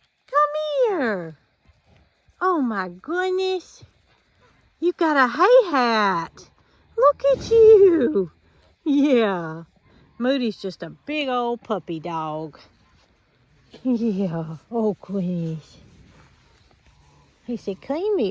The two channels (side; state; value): both; identical; correlation 1.00